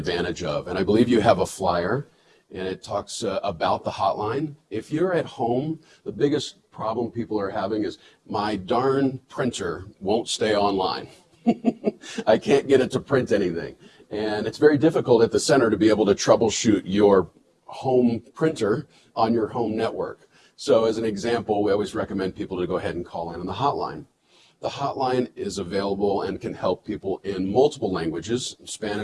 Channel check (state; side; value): identical; both; correlation 1.00